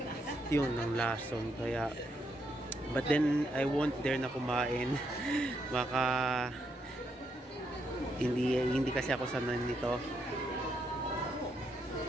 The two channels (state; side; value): normal; both; correlation 0.78